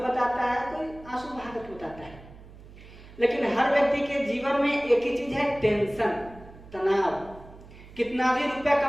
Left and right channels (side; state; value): right; noise; hum, 19 dB below the sound